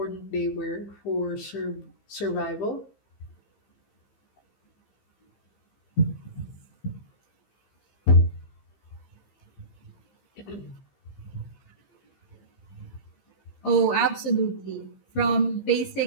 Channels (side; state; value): right; late; 15 ms